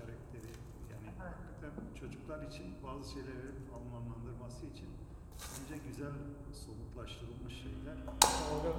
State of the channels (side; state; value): both; identical; correlation 1.00